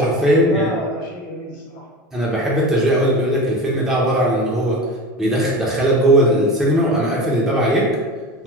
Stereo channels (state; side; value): normal; both; correlation 0.30